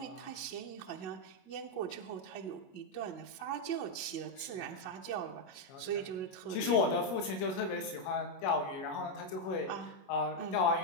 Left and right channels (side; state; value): right; late; 22 ms